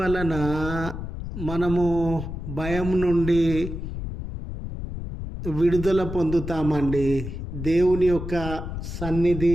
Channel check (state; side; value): noise; left; rumble, 7 dB below the sound